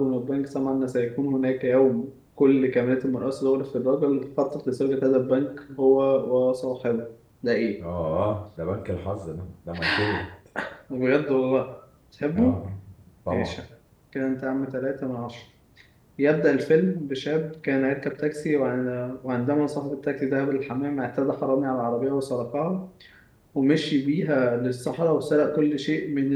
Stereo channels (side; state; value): both; identical; correlation 1.00